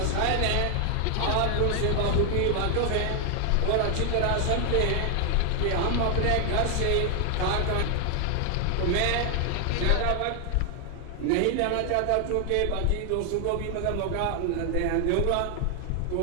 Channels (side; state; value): both; different; correlation 0.00